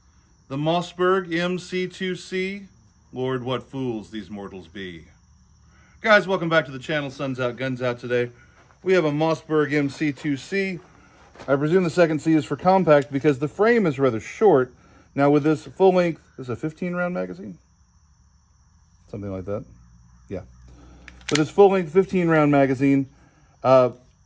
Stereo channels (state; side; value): identical; both; correlation 1.00